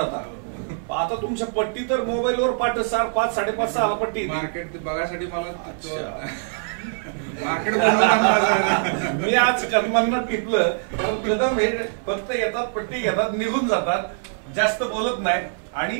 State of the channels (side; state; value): left; silent; 63 dB below the other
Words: आता तुमच्या पट्टी तर मोबाईलवर पाठ 5, 5:30, 6 पट्टी. मार्केट बघायसाठी मला मार्केट मी आज कदमांना टिपलं, कारण कदम हे फक्त येतात, पट्टी घेतात, निघून जातात, जास्त बोलत नाही